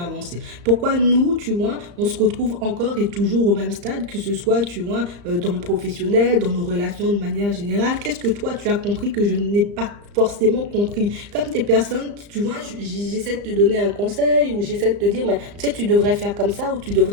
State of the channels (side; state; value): left; late; 35 ms